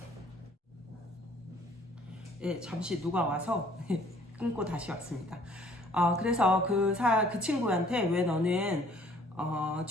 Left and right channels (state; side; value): normal; both; correlation 0.57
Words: 예, 잠시 누가 와서 끊고 다시 왔습니다. 그래서 그 친구한테 왜 너는